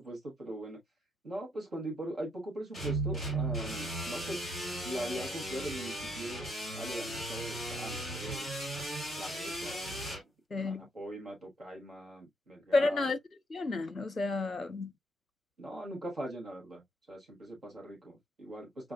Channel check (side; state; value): both; normal; correlation 0.73